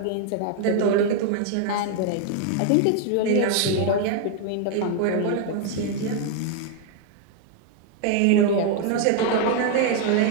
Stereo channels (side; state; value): both; different; correlation 0.00